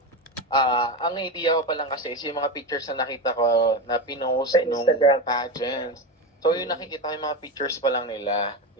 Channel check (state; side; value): normal; both; correlation 0.18